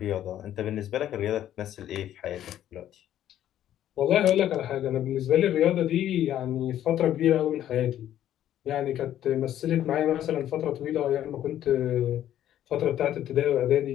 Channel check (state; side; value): quieter; right; 11.6 dB